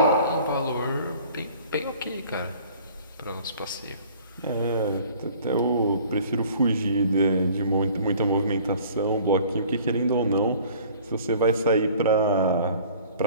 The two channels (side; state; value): both; inverted; correlation -0.51